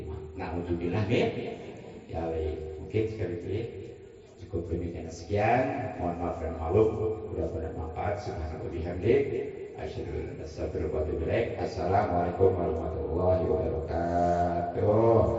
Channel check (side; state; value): both; identical; correlation 1.00